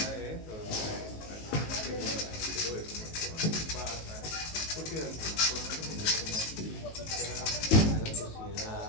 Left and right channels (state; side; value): late; right; 19 ms